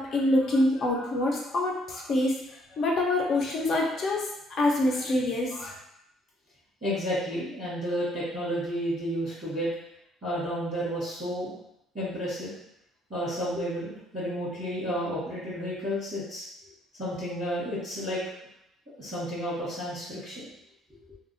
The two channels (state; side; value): normal; both; correlation 0.67